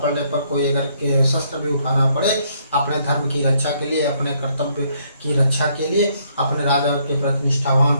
पर कोई अगर के शस्त्र भी उठाना पड़े अपने धर्म की रक्षा के लिए, अपने कर्तव्य की रक्षा के लिए, अपने राजा के प्रति निष्ठावान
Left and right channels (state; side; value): inverted; both; correlation -0.69